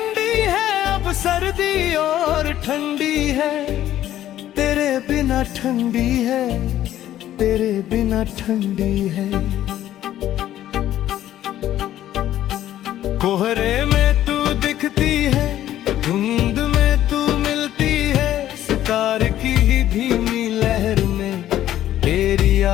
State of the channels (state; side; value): quieter; right; 12.6 dB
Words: है, अब सर्दी और ठंडी है, तेरे बिना ठंडी है, तेरे बिना ठंडी है। कोहरे में तू दिखती है, धुंध में तू मिलती है, सितार की धीमी लहर में तेरी